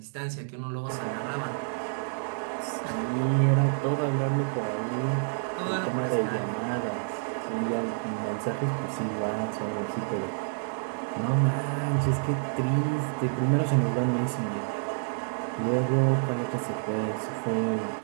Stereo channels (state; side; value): silent; left; digital silence